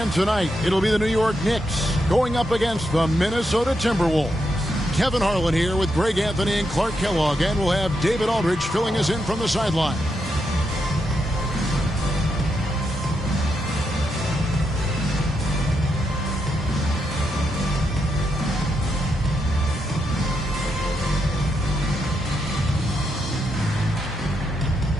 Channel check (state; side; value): normal; both; correlation 0.82